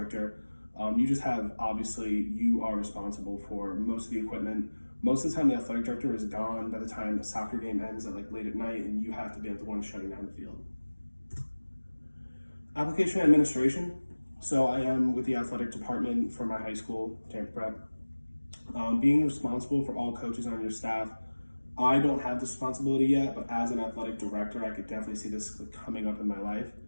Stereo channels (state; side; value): inverted; both; correlation -1.00